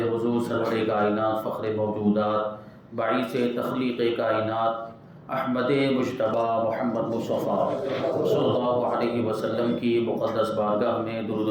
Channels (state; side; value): identical; both; correlation 1.00